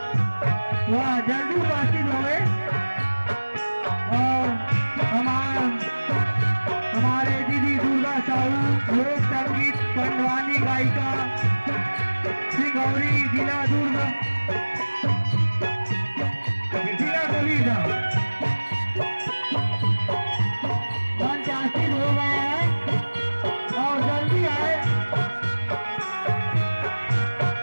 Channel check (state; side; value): inverted; both; correlation -1.00